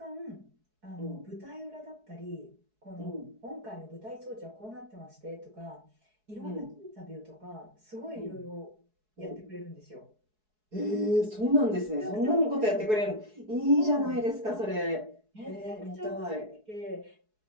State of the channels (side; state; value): left; late; 4.7 ms